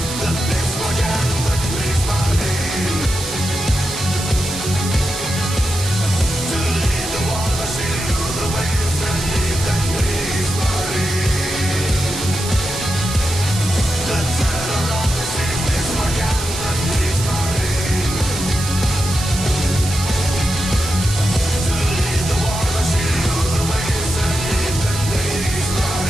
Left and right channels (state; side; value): noise; right; hiss, 7 dB below the sound